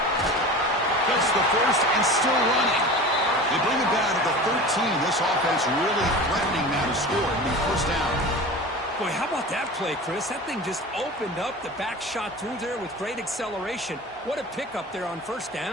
That's the first and still running. They bring it down to the 13. This offense really threatening now to score and be first down. Boy, how about that play, Chris? That thing just opened up. The back shot through there with great acceleration. What a pickup there on first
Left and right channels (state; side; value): normal; both; correlation 0.35